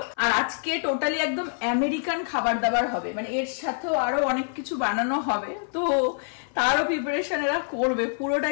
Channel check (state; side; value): silent; right; 56 dB below the other